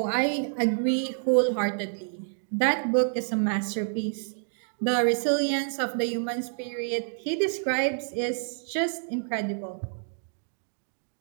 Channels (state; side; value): silent; left; digital silence